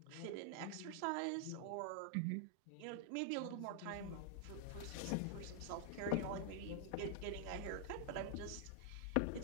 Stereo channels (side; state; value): both; different; correlation 0.00